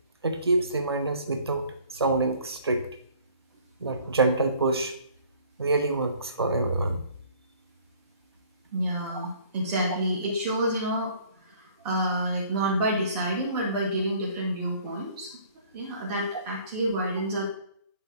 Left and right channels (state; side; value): inverted; both; correlation -0.55